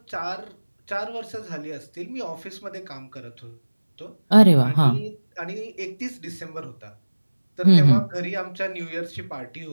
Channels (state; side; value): inverted; both; correlation -1.00